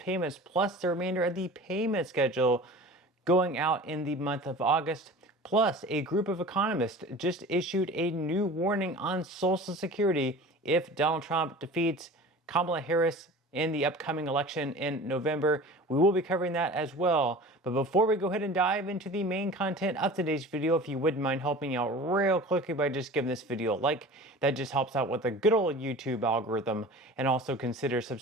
plus the remainder of the payment schedule going out in the month of August. Plus, a group of economists just issued a new warning on Social Security if Donald Trump defeats Kamala Harris in the upcoming election in November. We will be covering that as well. But before we go ahead and dive into the main content of today's video, if you wouldn't mind helping out real quickly by just giving this video a like, that just helps out with the good old YouTube algorithm, and also consider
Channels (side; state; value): both; normal; correlation 0.39